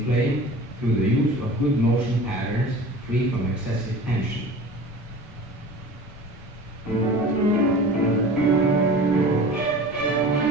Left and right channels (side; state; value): both; normal; correlation 0.39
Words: playing through the use of good motion patterns free from excessive tension.